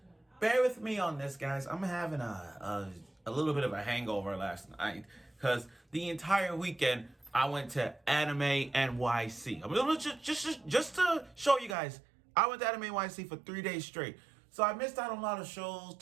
bear with me on this, guys. I'm having a little bit of a hangover last night because the entire weekend I went to Anime NYC. I mean, just to show you guys, I went to Anime NYC for 3 days straight. So I missed out on a lot of shows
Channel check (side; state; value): left; drops out; at 11.8 s